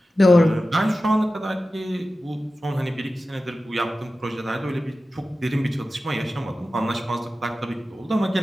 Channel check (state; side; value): normal; both; correlation 0.94